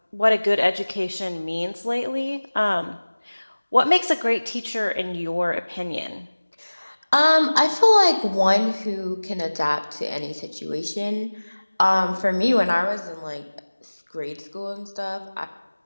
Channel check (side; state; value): both; inverted; correlation -1.00